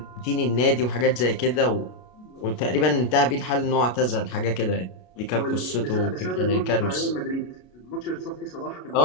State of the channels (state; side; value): late; right; 33 ms